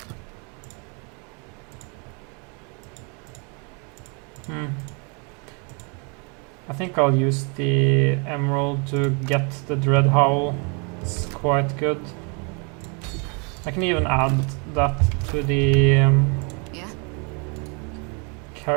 I think I'll use the emerald to get the Dread Howl. It's quite good. I can even add that to the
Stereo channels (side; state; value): left; quieter; 34.9 dB